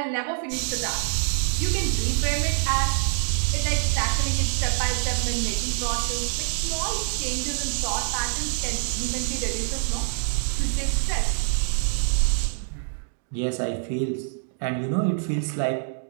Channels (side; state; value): left; silent; digital silence